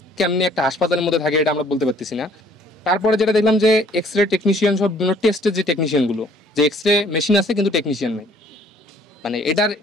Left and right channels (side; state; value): both; normal; correlation 0.59